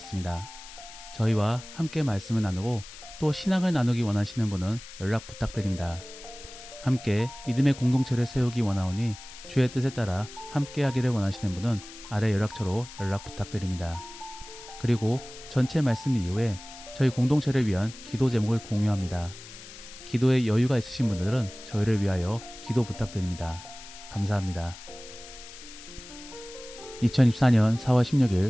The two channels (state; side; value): noise; left; hiss, 16 dB below the sound